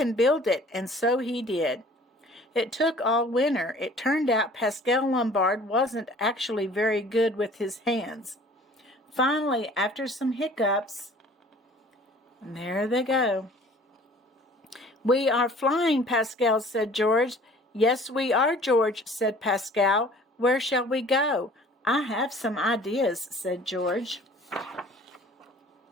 build it, and so he did. It took all winter. It turned out Pascal Lombard wasn't actually very good with his hands. Finally, after some hiccups, and there they go. We are flying, Pascal, said George. Yes, we are, George, said Pascal. Where shall we go? I have some ideas, said George.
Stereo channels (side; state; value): both; normal; correlation 0.50